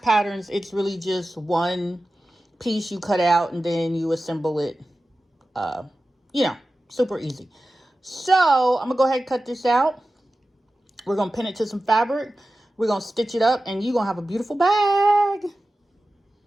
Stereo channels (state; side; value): normal; both; correlation 0.95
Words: patterns, it's really just one piece you cut out and then you assemble it, super easy. So I'm gonna go ahead and cut this out. We're gonna pin it to some fabric. We're gonna stitch it up and you're gonna have a beautiful bag.